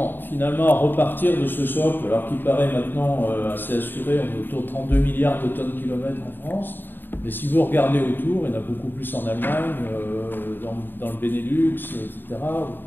finalement repartir de ce socle, alors qu'il paraît maintenant assez assuré, on est autour de 32 milliards de tonnes kilomètres en France, mais si vous regardez autour, il y en a beaucoup plus en Allemagne, dans le Benelux, etc.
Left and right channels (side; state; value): right; late; 0.094 ms